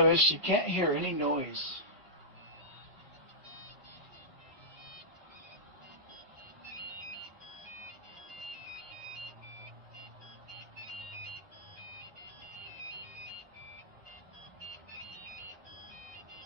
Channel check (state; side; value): normal; both; correlation -0.15